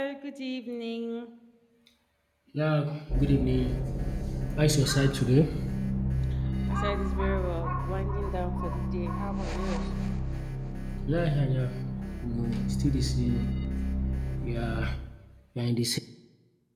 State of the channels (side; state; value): both; identical; correlation 1.00